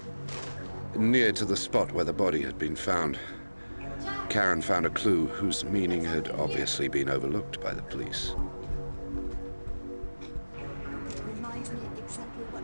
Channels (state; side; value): inverted; both; correlation -1.00